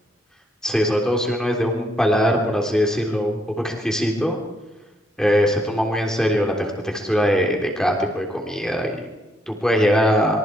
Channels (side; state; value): both; normal; correlation 0.73